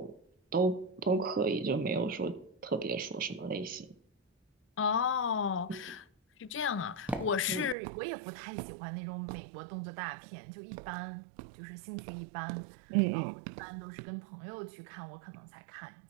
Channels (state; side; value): drops out; left; at 7.8 s